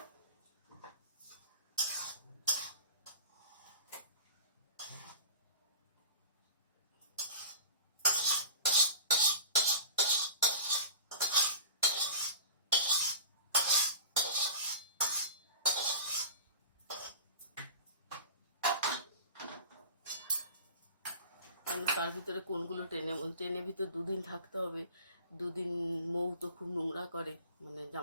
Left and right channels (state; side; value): inverted; both; correlation -0.38